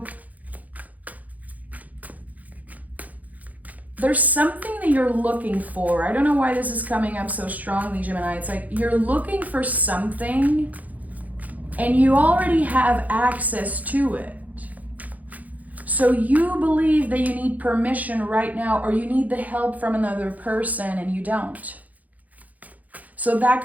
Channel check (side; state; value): left; late; 0.077 ms